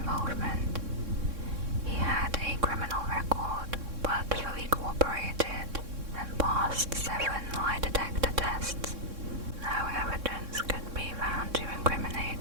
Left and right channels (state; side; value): late; left; 3.6 ms